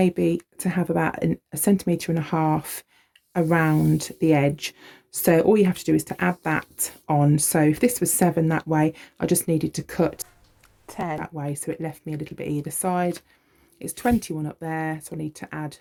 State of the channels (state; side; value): identical; both; correlation 1.00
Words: to have about 1.5 centimetres around the edge. So all you have to do is to add that on. So if this was 7 that way, I just needed to cut 10 that way, so it left me a little bit either side. It's 21 up there, so I need to add